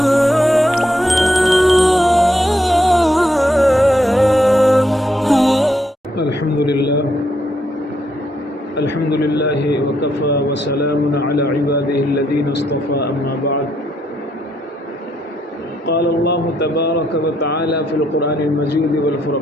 لله وكفى وسلام على عباده الذين اصطفى أما بعد قال الله تبارك وتعالى في القرآن المجيد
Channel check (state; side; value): normal; both; correlation 0.76